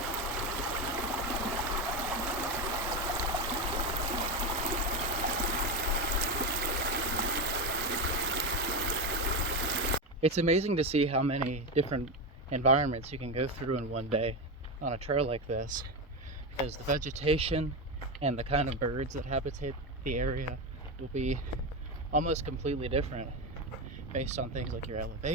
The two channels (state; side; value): normal; both; correlation 0.14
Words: It's amazing to see how many different environments you can go through in one day on a trail like this, because the vegetation and the kind of birds that habitate the area will be almost completely different based on things like your